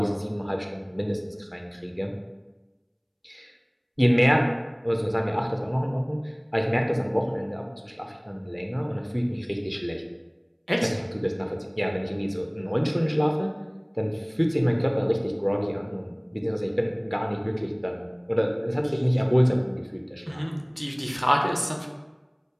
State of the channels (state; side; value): identical; both; correlation 1.00